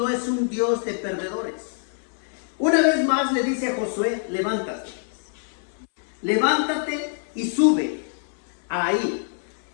es un Dios de perdedores. Una vez más le dice a Josué: levántate. Levántate y sube ahí.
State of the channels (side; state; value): right; silent; digital silence